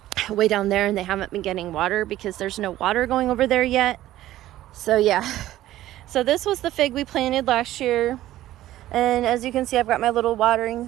way down there and they haven't been getting water because there's no water going over there yet. So yeah, so this was the fig we planted last year, and as you can see, I've got my little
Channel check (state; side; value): quieter; left; 14.4 dB